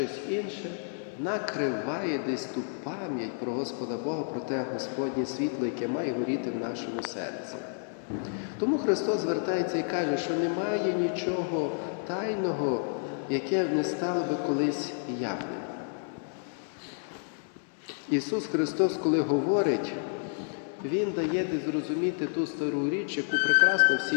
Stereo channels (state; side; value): silent; right; digital silence